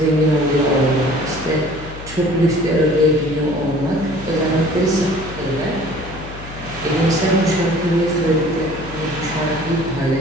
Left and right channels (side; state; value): left; noise; hum, 14 dB below the sound